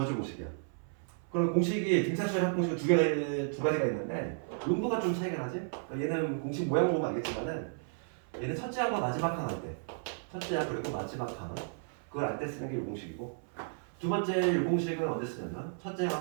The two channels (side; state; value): left; silent; 56 dB below the other